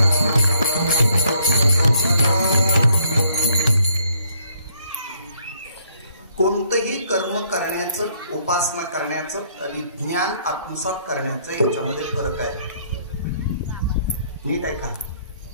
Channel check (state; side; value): inverted; both; correlation -0.68